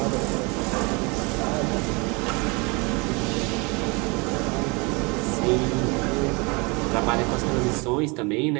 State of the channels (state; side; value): quieter; left; 28.6 dB